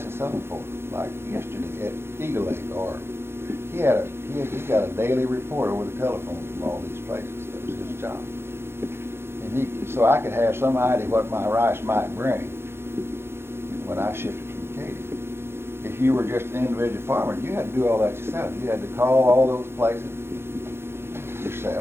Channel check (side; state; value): left; late; 0.12 ms